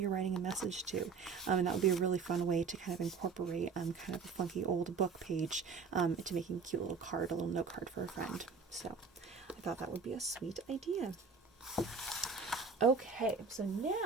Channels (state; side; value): quieter; left; 5.2 dB